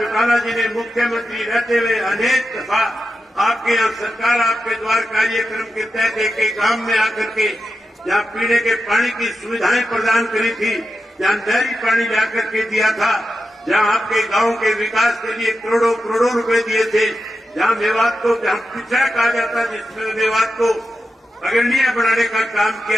जी ने मुख्यमंत्री रहते हुए अनेक दफा आपके यहाँ सरकार आपके द्वार कार्यक्रम के तहत एक गांव में आकर के जहाँ पीने के पानी की सुविधाएं प्रदान करी थी, जहाँ नहरी पानी लाकर के दिया था, जहाँ आपके गांव के विकास के लिए करोड़ों करोड़ों रुपए दिए थे, जहाँ मेवात को जहाँ पिछड़ा कहा जाता जिसमें मेवात को अग्रणीय बनाने का काम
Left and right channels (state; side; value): normal; both; correlation 0.90